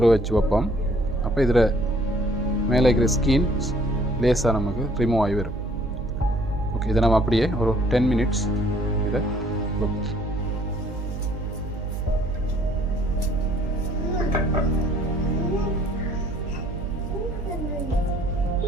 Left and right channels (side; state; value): right; noise; hum, 7 dB below the sound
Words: வச்சு வைப்போம். அப்போ இதில் மேலே இருக்கிற ஸ்கின் லேஸாக நமக்கு ரிமூவ் ஆகி வரும். ஓகே, இதை நம்ம அப்படியே ஒரு 10 மினிட்ஸ் இதை வைப்போம்.